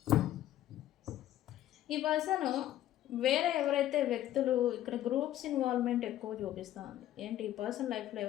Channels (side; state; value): right; quieter; 13.0 dB